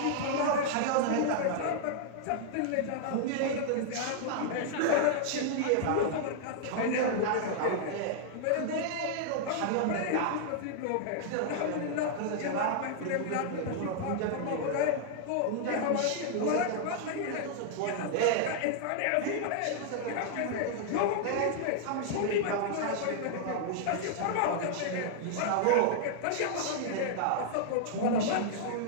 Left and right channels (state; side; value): different; both; correlation -0.01